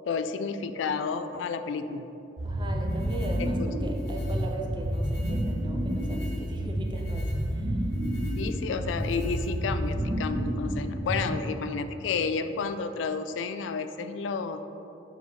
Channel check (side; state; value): both; normal; correlation 0.56